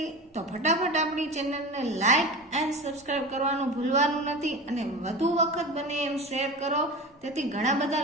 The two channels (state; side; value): normal; both; correlation 0.30